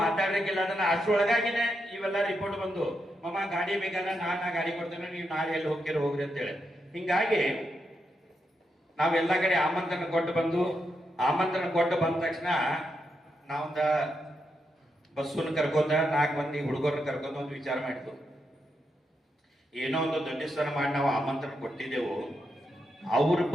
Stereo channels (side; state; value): both; normal; correlation 0.83